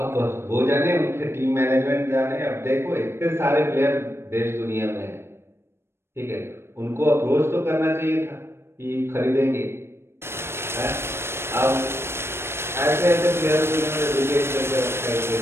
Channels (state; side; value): late; left; 0.12 ms